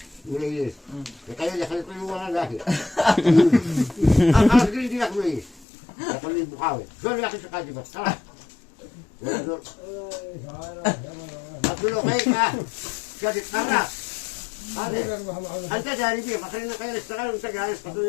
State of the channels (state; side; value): drops out; right; at 5.7 s